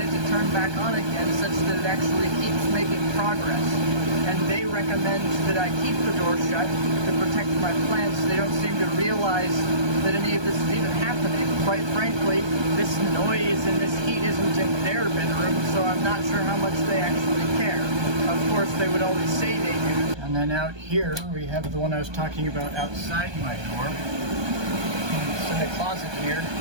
to turn back on again, such that it actually keeps making progress. And they recommend that I keep the door shut to protect my plants. They don't seem to realize that any of this is even happening. Quite frankly, this noise and this heat isn't in their bedroom, so I'm not sure how much they actually care. Of course, they would always say they do. And then out here, we have the one I was talking about outside my door. It's in the closet here.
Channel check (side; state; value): left; late; 1.2 ms